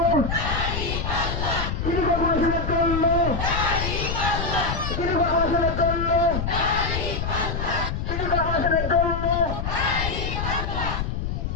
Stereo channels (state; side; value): noise; left; rumble, 3 dB below the sound